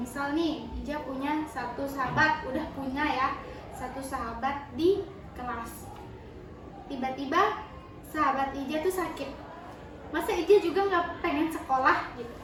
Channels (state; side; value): identical; both; correlation 1.00